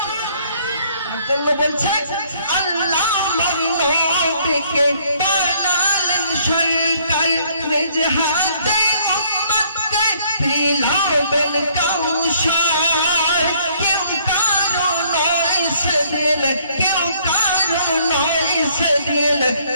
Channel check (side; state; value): both; inverted; correlation -0.63